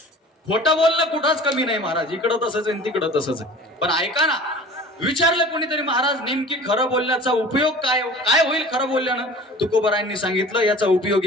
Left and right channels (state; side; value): normal; both; correlation 0.42